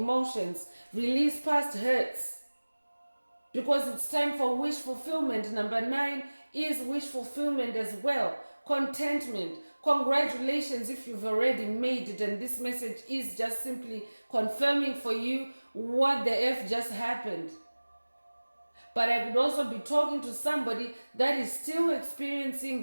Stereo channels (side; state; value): both; inverted; correlation -1.00